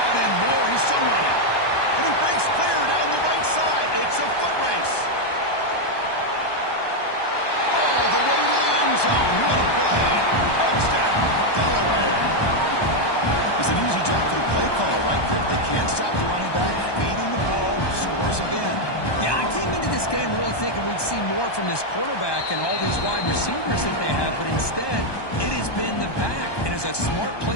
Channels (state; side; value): late; right; 1.2 ms